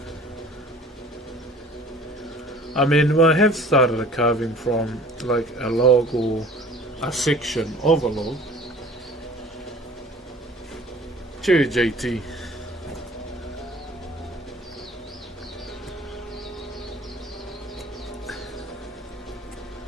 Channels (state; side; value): normal; both; correlation 0.48